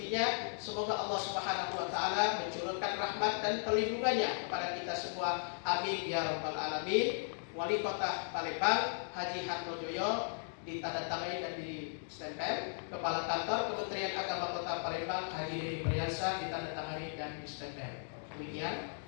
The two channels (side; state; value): right; silent; digital silence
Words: Semoga Allah Subhanahu wa taala mencurahkan rahmat dan perlindungannya kepada kita semua. Amin ya rabbal alamin. Wali Kota Palembang Haji Hartojoyo ditandatangani dan ditempel. Kepala Kantor Kementerian Agama Kota Palembang biasa ditandatangani dan distempel. Demikian